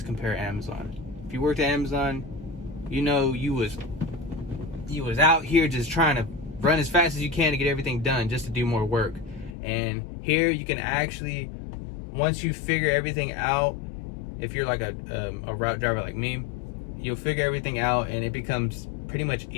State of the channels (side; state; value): right; drops out; at 9.6 s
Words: compare Amazon. If you worked at Amazon, you know you was out here just trying to run as fast as you can to get everything done, just to do more work. And here you can actually, once you figure everything out, if you're like a route driver like me, you'll figure everything out and it becomes pretty much